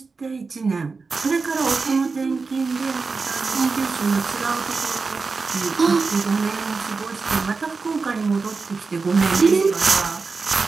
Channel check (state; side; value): quieter; left; 4.4 dB